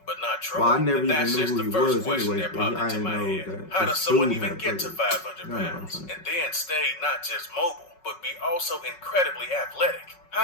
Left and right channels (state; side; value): late; right; 5.4 ms